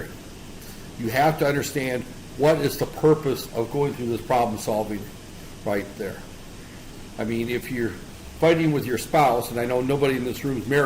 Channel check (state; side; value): identical; both; correlation 1.00